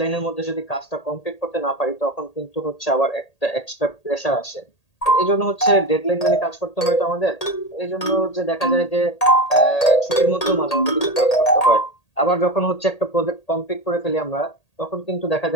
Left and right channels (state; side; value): late; right; 1.8 ms